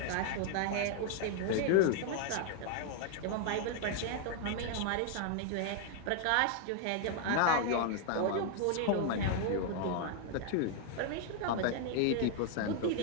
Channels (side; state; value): both; different; correlation 0.00